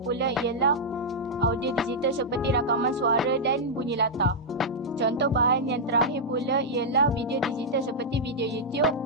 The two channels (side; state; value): both; normal; correlation -0.06